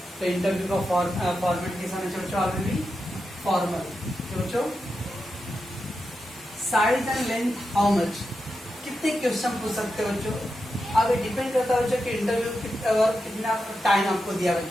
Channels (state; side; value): normal; both; correlation 0.88